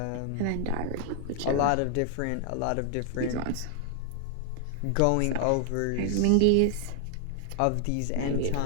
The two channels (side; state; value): both; different; correlation 0.00